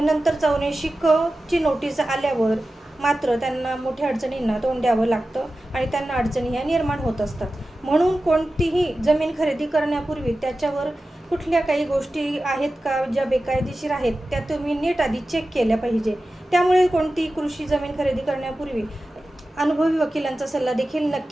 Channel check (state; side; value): normal; both; correlation 0.94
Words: नंतर 84 क ची नोटीस आल्यावर मात्र त्यांना मोठ्या अडचणींना तोंड द्यावं लागतं आणि त्यांना अडचणी ह्या निर्माण होत असतात। म्हणून कोणतीही जमीन खरेदी करण्यापूर्वी त्याच्यावर कुठल्या काही गोष्टी आहेत का ज्या बेकायदेशीर आहेत त्या तुम्ही नीट आधी चेक केल्या पाहिजे। त्यामुळे कोणती कृषी जमीन खरेदी करण्यापूर्वी अनुभवी वकिलांचा सल्ला देखील